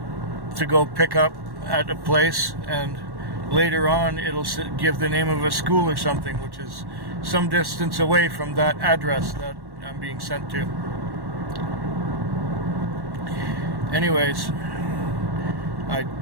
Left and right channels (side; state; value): left; late; 1.1 ms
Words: to go pick up at a place, and later on it'll give the name of a school or something, which is some distance away from that address that I'm being sent to. Anyways, I